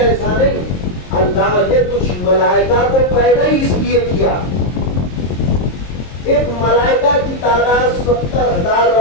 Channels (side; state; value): right; late; 22 ms